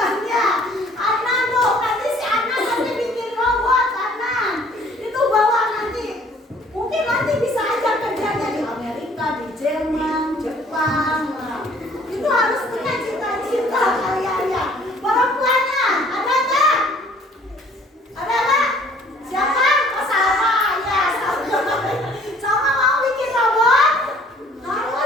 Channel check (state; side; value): normal; both; correlation 0.56